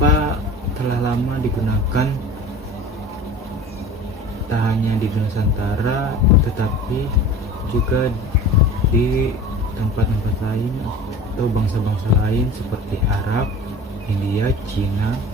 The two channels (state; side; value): normal; both; correlation 0.39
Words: telah lama digunakan tak hanya di Nusantara tetapi juga di tempat-tempat lain atau bangsa-bangsa lain seperti Arab, India, Cina,